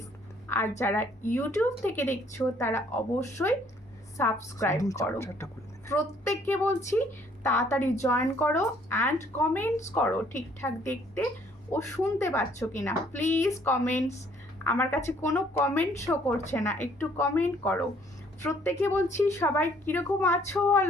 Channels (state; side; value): normal; both; correlation 0.62